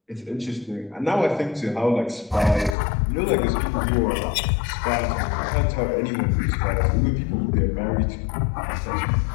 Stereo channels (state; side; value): drops out; right; at 2.8 s